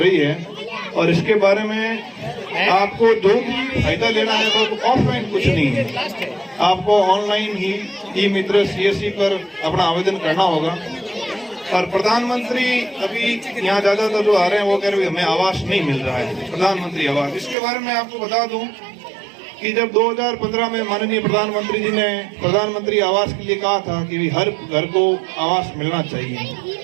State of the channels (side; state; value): left; drops out; at 17.6 s